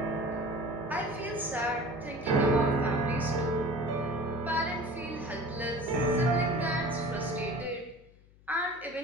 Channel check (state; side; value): noise; left; hum, 26 dB below the sound